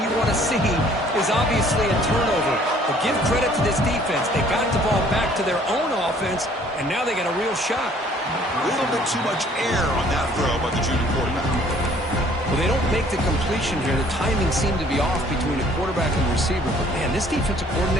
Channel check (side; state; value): both; normal; correlation 0.57